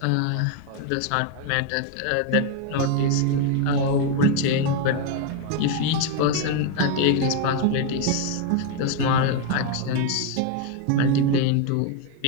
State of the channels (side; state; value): both; different; correlation 0.01